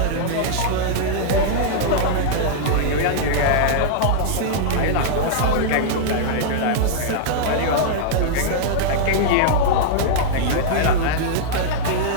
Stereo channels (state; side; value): different; both; correlation -0.02